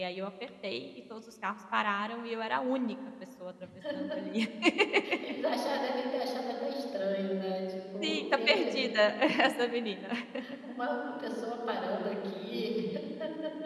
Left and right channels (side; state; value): both; identical; correlation 1.00